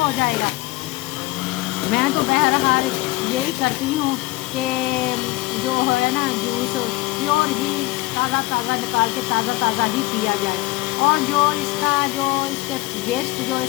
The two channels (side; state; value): right; quieter; 20.2 dB